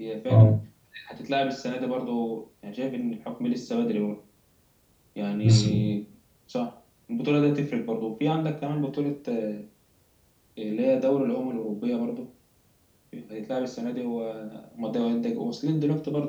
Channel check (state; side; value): identical; both; correlation 1.00